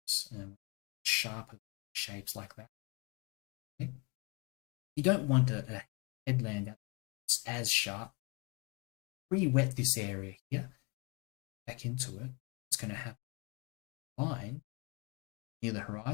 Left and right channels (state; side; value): quieter; right; 29.5 dB